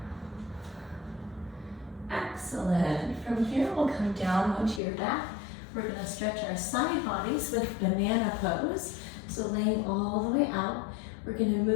Excellent. From here, we'll come down onto your back. We're going to stretch our side bodies with banana pose. So laying all the way out, we're going to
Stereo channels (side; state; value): right; drops out; at 4.8 s